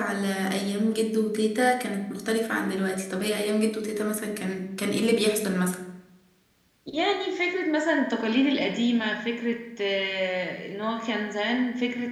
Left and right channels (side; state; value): both; identical; correlation 1.00